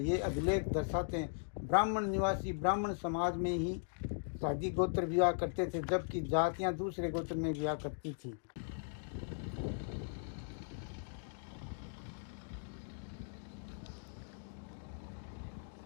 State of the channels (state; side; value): silent; right; digital silence